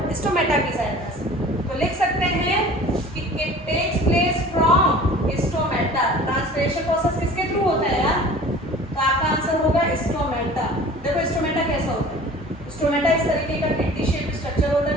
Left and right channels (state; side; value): normal; both; correlation 0.44